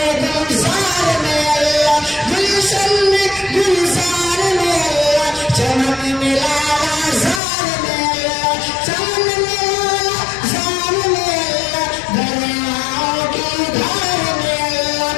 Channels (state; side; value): drops out; right; at 7.4 s